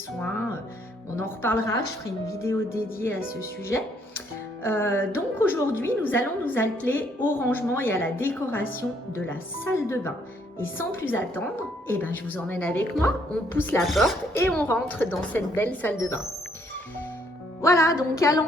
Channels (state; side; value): normal; both; correlation 0.68